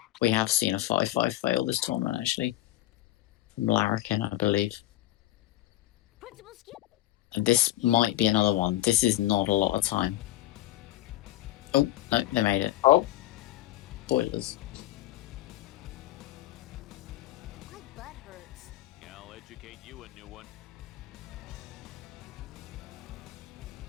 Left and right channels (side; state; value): right; quieter; 15.2 dB